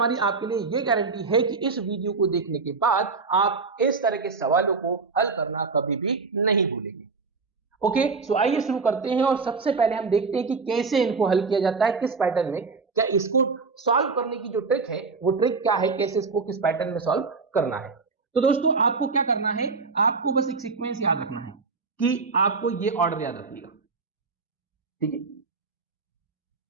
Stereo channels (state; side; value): quieter; left; 4.5 dB